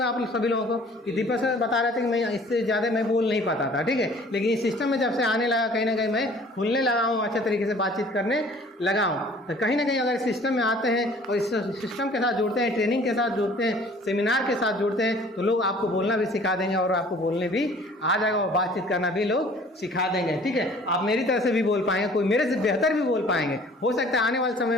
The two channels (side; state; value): both; normal; correlation 0.52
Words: आप सभी लोगों को कि दीपक सर बता रहे थे कि मैं इससे ज़्यादा मैं बोल नहीं पाता था, ठीक है, लेकिन इस सिस्टम में जब से आने लगा कहीं ना कहीं मैं खुलने लगा हूँ, अच्छे तरीके से बातचीत करने लगा हूँ। तो कहीं ना कहीं अगर इस सिस्टम में आते हैं और इस सिस्टम के साथ जुड़ते हैं, ट्रेनिंग के साथ जुड़ते हैं, सेमिनार के साथ जुड़ते हैं, तो लोग आपको बोलना भी सिखा देंगे और आपको बोलने भी आ जाएगा और बातचीत करना भी लोग सिखा देंगे, ठीक है। आप मेरी तरह से भी बोल पाएंगे, कोई मेरे से बेहतर भी बोल पाएंगे, हो सकता है आने वाले समय